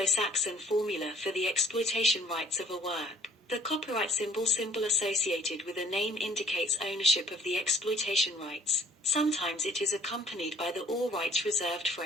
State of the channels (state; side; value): normal; both; correlation 0.58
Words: formula for the exploitation rights of a work. The copyright symbol associated with a name indicates ownership of the exploitation rights. Sometimes it is accompanied by the all rights reserved